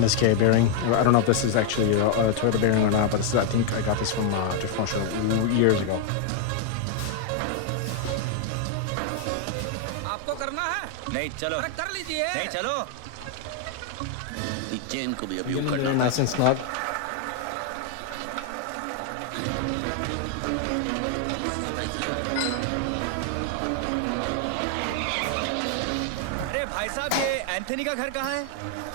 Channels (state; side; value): different; both; correlation 0.00